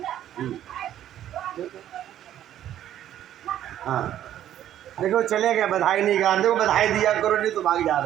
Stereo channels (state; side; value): quieter; left; 11.6 dB